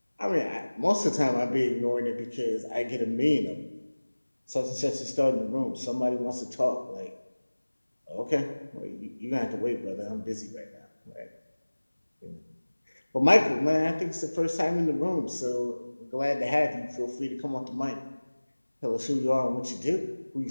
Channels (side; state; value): both; inverted; correlation -1.00